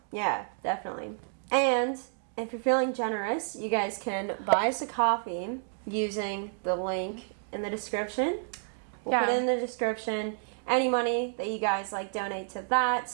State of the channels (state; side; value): silent; left; digital silence